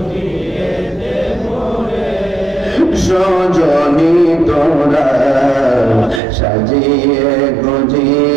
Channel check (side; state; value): left; drops out; at 6.2 s